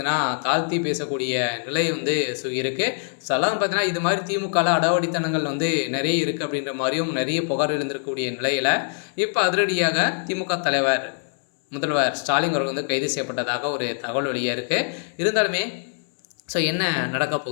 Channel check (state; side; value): silent; right; 63 dB below the other